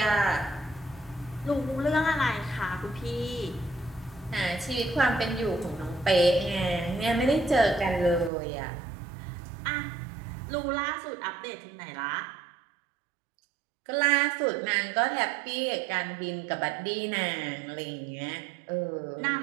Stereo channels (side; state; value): left; drops out; at 8.3 s